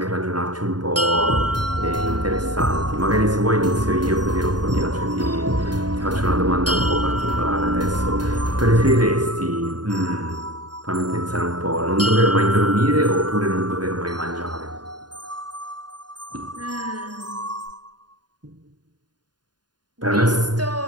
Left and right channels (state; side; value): late; left; 0.70 ms